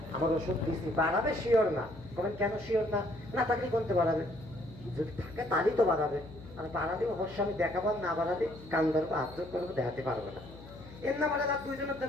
আমার ওষুধ দিচ্ছি বাড়াবে শিওর না কবেন কেন শিওর না না থাকলে কোনতে বাড়াবে যদি থাকে তাহলেই তো বাড়াবে আর বাড়ালে অবশ্য আমি দেখাবার না বাড়ালে কান ধরবো আত্ম করবো দেখাতে পারবো না এর না বাড়ালে 2 জনের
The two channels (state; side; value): noise; left; hum, 17 dB below the sound